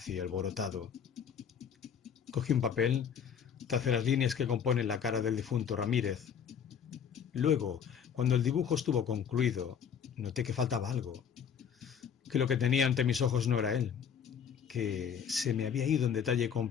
y alborotado. Cogí un papel, tracé las líneas que componen la cara del difunto Ramírez. Luego, cuando el dibujo estuvo concluido, noté que faltaba algo, que lo que tenía ante mis ojos no era él, que se me había ido un detalle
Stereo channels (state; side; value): quieter; right; 7.6 dB